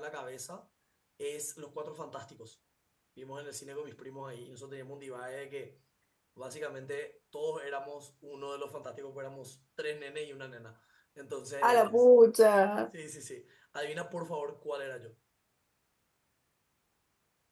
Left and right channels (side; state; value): both; identical; correlation 1.00